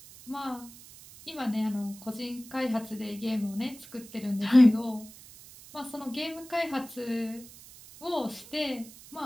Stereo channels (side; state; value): right; noise; hiss, 19 dB below the sound